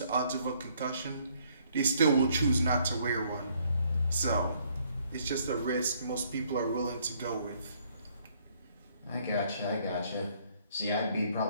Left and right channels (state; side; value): inverted; both; correlation -0.66